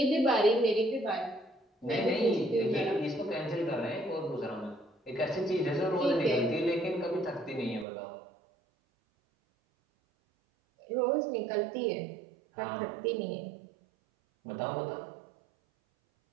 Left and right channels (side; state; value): left; drops out; at 7.9 s